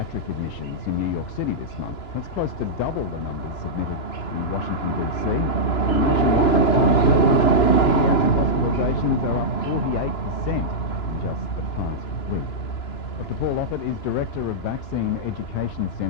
admissions in New York City this month. That's close to double the numbers submitted in Washington, D.C. Hospitalizations are up 48% just the past week. Dr. Paul Offit is Director of Vaccine Education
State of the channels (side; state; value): right; late; 2.9 ms